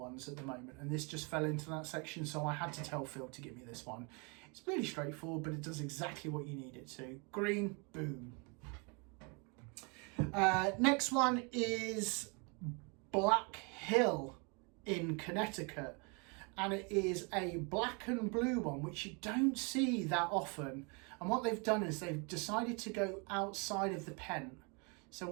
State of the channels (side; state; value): left; quieter; 32.6 dB